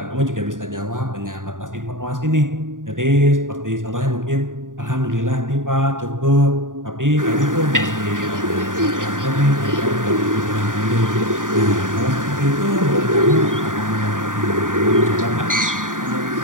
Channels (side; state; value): left; late; 0.88 ms